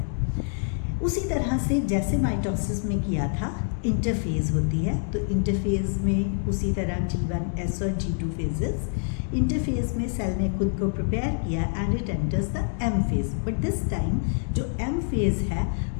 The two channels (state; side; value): silent; right; 61 dB below the other